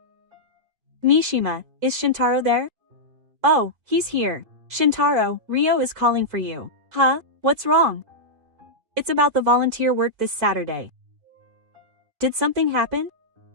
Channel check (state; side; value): late; left; 4.5 ms